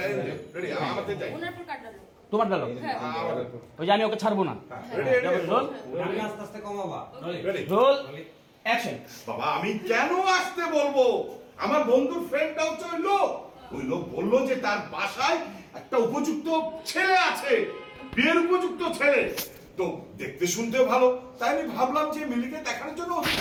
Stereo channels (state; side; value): identical; both; correlation 1.00